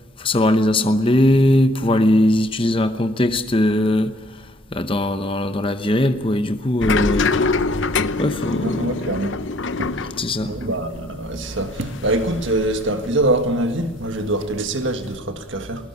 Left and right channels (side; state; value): both; normal; correlation 0.60